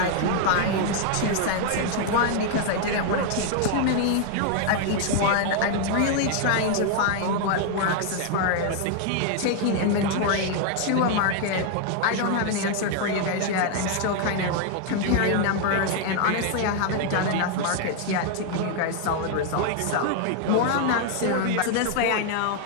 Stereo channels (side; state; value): both; different; correlation 0.00